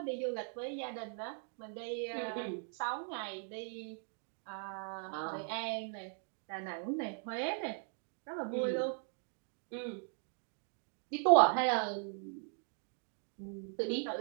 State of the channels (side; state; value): left; silent; 52 dB below the other